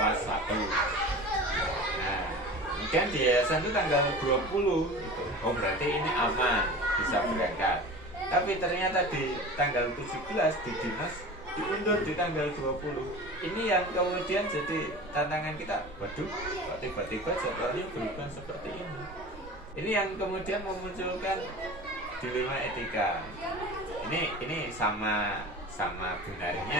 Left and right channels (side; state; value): both; normal; correlation 0.36